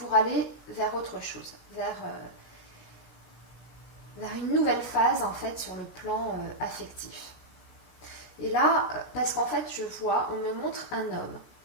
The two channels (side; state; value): right; late; 17 ms